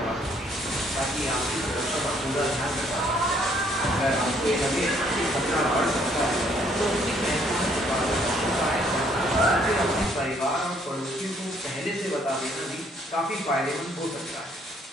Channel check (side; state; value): both; normal; correlation 0.66